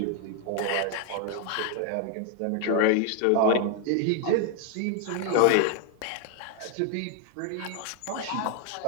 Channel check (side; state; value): both; different; correlation 0.00